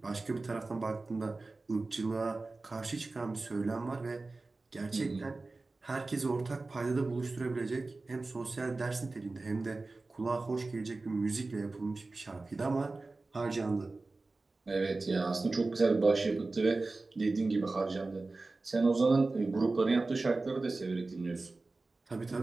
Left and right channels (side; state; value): left; quieter; 3.4 dB